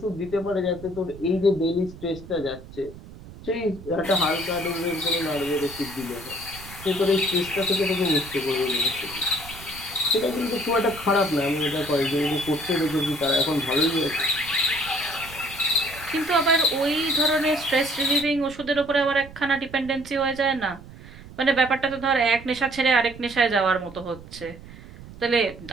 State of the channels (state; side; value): noise; right; rumble, 17 dB below the sound